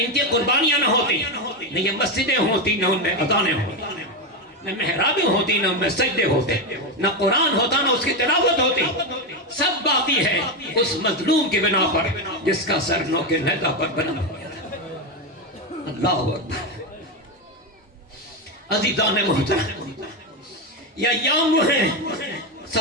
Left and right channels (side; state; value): both; normal; correlation 0.10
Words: کی قربانیاں نہ ہوتی نہ یہ مسجدیں ہوتی نہ ان میں اذانیں ہوتی، نہ محرابیں ہوتی نہ ان میں سجدے ہوتے، نہ قرآن ہوتا نہ اس کی تلاوت ہوتی، سب باقی ہے اس مظلوم کی بنا پر جس کا سر نوک نیزہ پر بنا ہوا تھا۔ اللہ اکبر۔ عزیزان محترم، یہ ایام وہ ہیں،